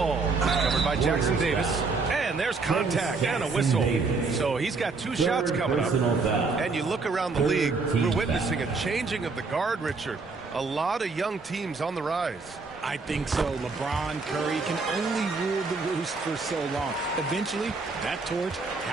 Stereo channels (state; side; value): quieter; left; 4.2 dB